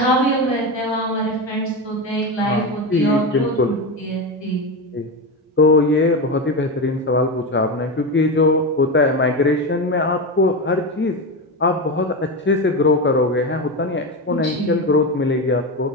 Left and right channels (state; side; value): normal; both; correlation 0.17